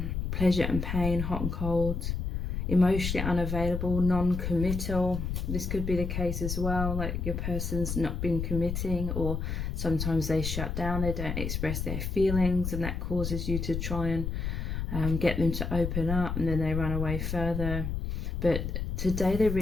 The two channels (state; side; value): noise; left; rumble, 3 dB below the sound